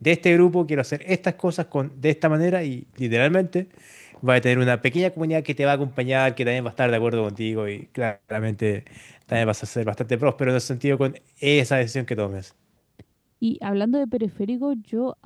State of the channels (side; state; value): both; identical; correlation 1.00